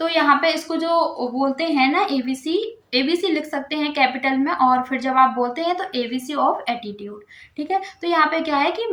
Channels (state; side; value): identical; both; correlation 1.00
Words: यहाँ पे इसको जो बोलते हैं ना एबीसी, एबीसी लिख सकते हैं कैपिटल में, और फिर जब आप बोलते हैं तो एबीसी ऑफ एटीट्यूड। ठीक है। तो यहाँ पे क्या है कि